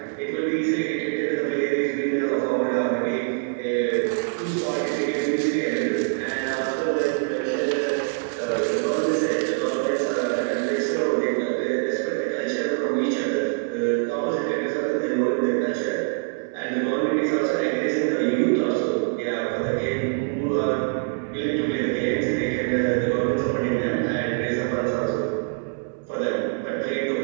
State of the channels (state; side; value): silent; left; 62 dB below the other